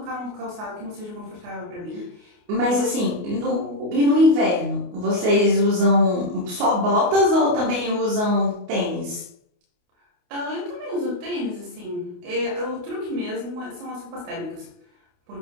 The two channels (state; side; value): late; left; 28 ms